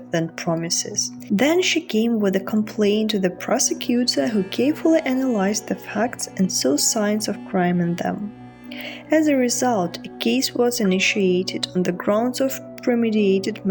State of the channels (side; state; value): both; identical; correlation 1.00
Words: than promises. Then she came with a complaint to the prosecutor, who carefully analyzed the facts and saw signs of crime in them. As a result, a case was initiated on the grounds of premeditated